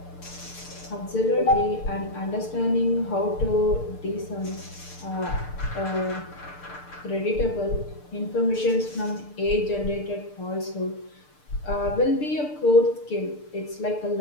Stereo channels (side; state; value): right; late; 6.7 ms